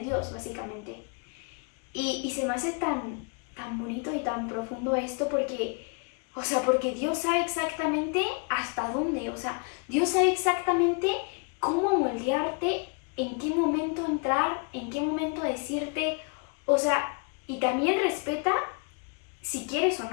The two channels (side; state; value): right; quieter; 35.4 dB